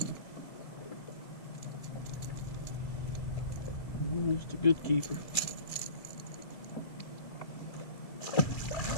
Just a good keeper.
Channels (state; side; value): late; right; 2.3 ms